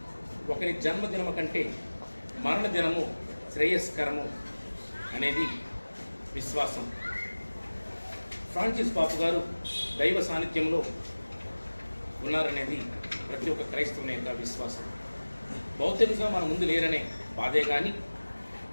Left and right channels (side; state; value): both; inverted; correlation -1.00